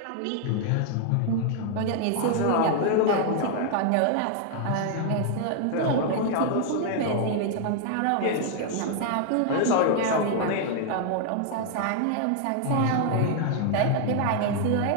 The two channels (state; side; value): different; both; correlation 0.00